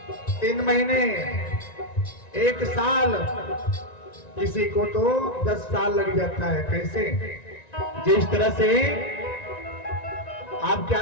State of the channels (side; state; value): right; late; 1.9 ms